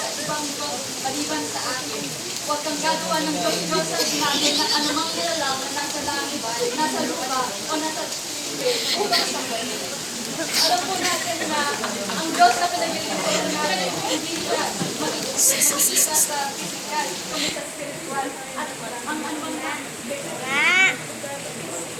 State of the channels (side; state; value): both; identical; correlation 1.00